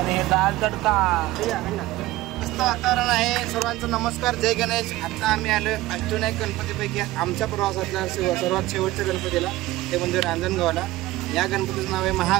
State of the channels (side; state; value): left; quieter; 17.4 dB